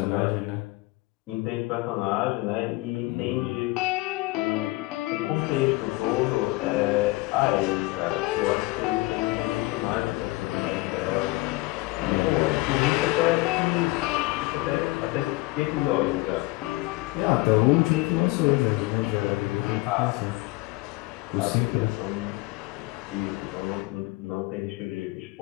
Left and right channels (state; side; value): quieter; right; 21.9 dB